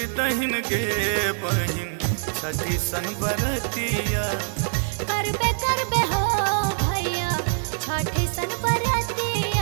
दहिन के बहिन छठी सन बरतिया। करबे करबे हो भैया छठी सन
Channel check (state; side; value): silent; left; digital silence